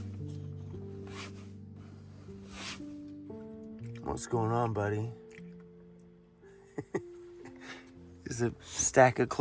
What's going on, buddy? There's a stack of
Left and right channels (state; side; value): identical; both; correlation 1.00